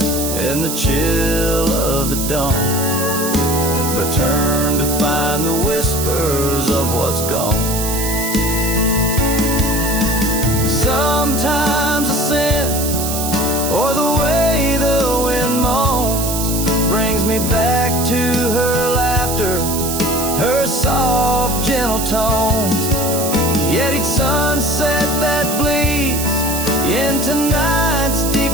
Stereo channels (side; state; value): right; noise; hiss, 4 dB below the sound